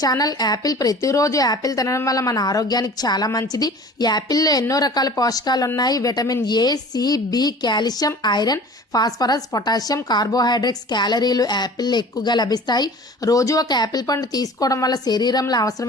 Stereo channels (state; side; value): normal; both; correlation 0.43